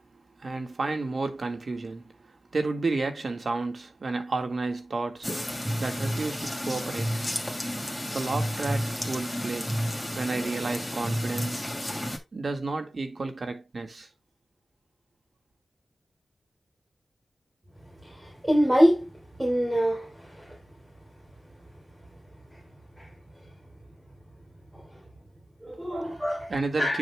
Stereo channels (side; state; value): both; normal; correlation 0.97